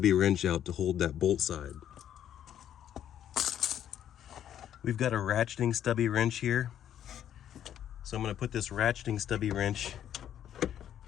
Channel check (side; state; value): right; quieter; 10.4 dB